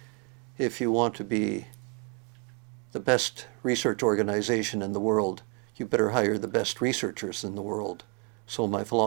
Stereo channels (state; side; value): quieter; left; 32.6 dB